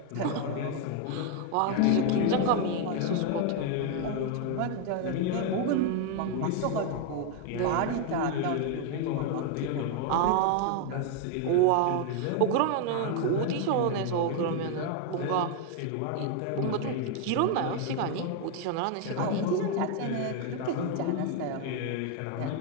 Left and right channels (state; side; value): different; both; correlation 0.01